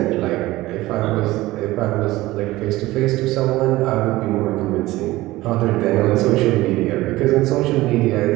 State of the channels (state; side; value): quieter; left; 18.1 dB